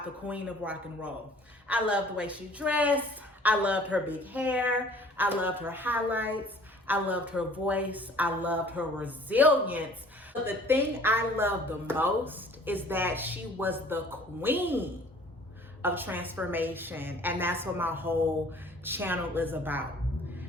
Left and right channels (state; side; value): normal; both; correlation 0.52